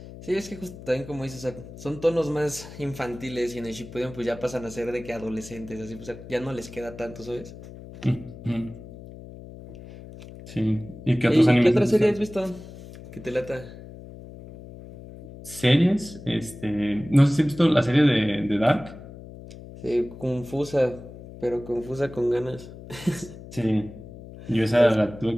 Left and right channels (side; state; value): left; noise; hum, 15 dB below the sound